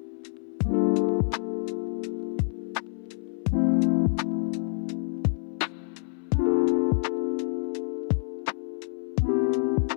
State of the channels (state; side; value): silent; right; 60 dB below the other